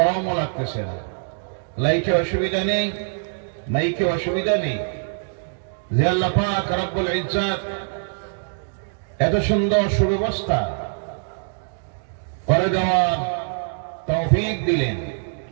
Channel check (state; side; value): silent; left; digital silence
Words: লাগতেছে না, লাইটে অসুবিধা নেই, মাইকে অসুবিধা নেই। যে আল্লাহ পাক রব্বুল ইজ্জত এত সুন্দর সুব্যবস্থা করে দেওয়ার তৌফিক দিলেন,